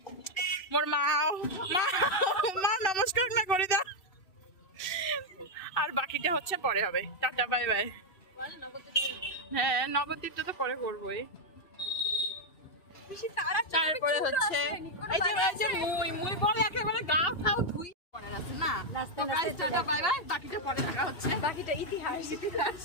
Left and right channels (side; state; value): right; late; 2.7 ms